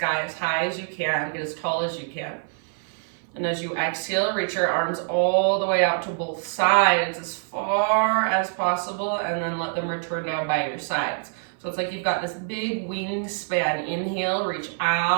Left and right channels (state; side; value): silent; left; 57 dB below the other